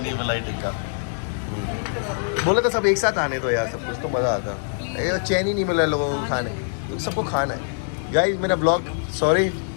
मलाई टिक्का। बोले तो सब एक साथ आने तो यार, सब कुछ तो मज़ा आता। ये चैन ही नहीं मिला लोगों को खाने, तो सबको खाना है। गाइस मेरा ब्लॉग, सॉरी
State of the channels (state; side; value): silent; right; digital silence